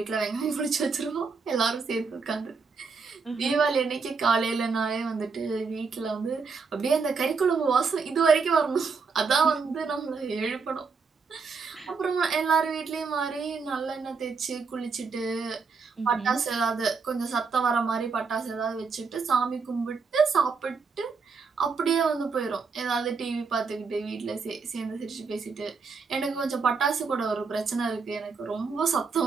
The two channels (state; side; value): quieter; left; 5.0 dB